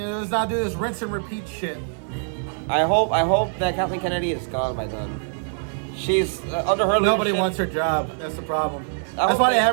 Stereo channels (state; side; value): silent; left; digital silence